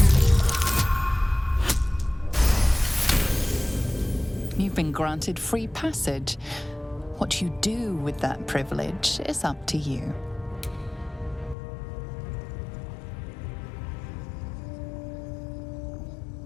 You've been granted free passage. What you do with that privilege is up to you.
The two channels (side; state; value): right; drops out; at 11.6 s